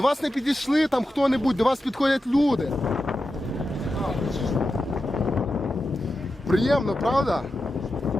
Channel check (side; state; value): both; normal; correlation 0.90